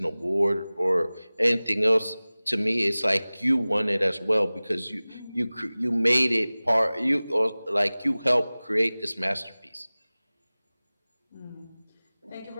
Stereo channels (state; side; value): inverted; both; correlation -0.99